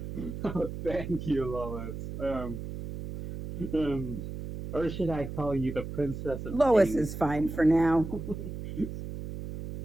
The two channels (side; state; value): right; noise; hum, 8 dB below the sound